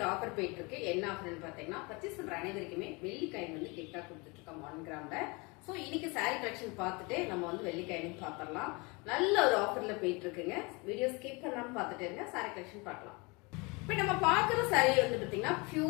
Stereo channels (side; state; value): right; quieter; 27.8 dB